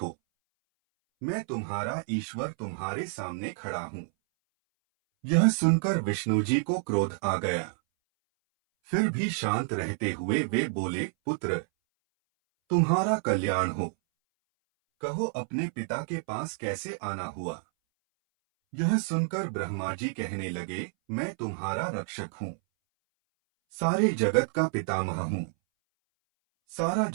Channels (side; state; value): left; silent; 59 dB below the other